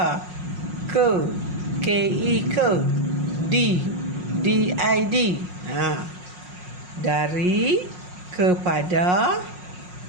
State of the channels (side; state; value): left; late; 5.5 ms